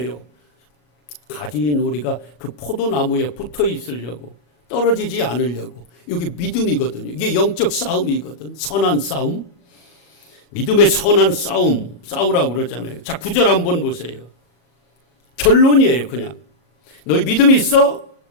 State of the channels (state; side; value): late; right; 34 ms